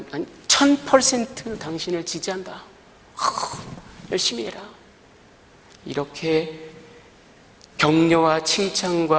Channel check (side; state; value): both; identical; correlation 1.00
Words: 1000% 당신을 지지한다. 열심히 해라. 이렇게 격려와